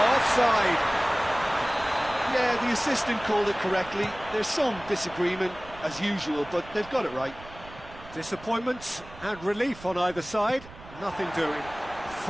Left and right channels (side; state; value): right; noise; rumble, 18 dB below the sound